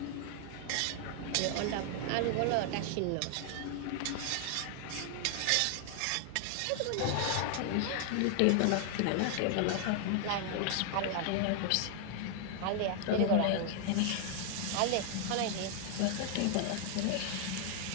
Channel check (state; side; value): different; both; correlation 0.00